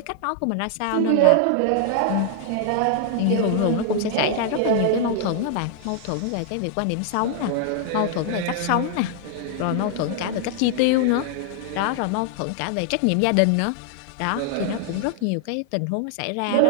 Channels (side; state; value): both; different; correlation 0.00